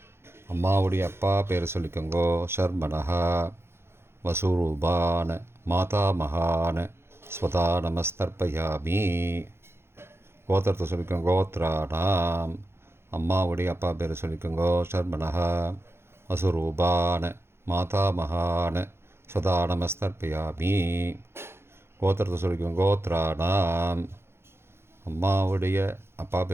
அம்மாவுடைய அப்பா பேர் சொல்லிக்கோங்கோ. ஷர்மனஹா. வசுரூபான மாதாமகான ஸ்வதா நமஸ்தர்ப்பயாமி. கோத்திரத்தை சொல்லிக்கோங்க. கோத்ராணாம். அம்மாவுடைய அப்பா பேர் சொல்லிக்கோங்கோ. ஷர்மனஹா. வசுரூபான மாதாமகான ஸ்வதா நமஸ்தர்ப்பயாமி. கோத்திரத்தை சொல்லிக்கோங்க. கோத்ராணாம். அம்மாவுடைய அப்பா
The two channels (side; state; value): left; late; 0.12 ms